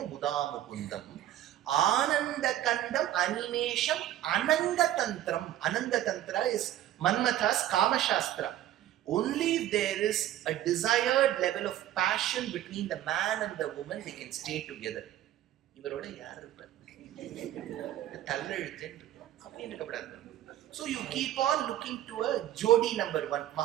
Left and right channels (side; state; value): left; quieter; 12.7 dB